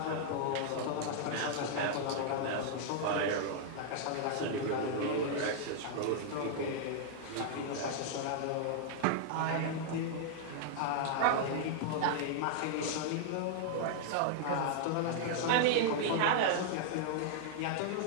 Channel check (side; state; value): both; different; correlation -0.01